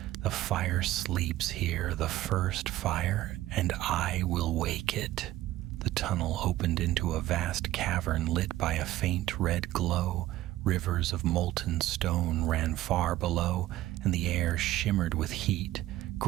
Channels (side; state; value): left; quieter; 15.3 dB